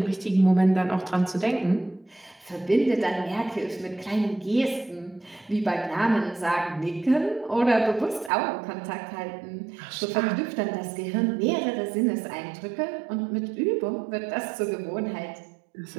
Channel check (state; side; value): drops out; left; at 8.3 s